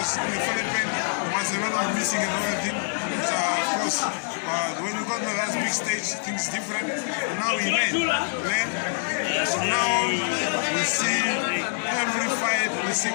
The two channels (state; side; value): silent; right; digital silence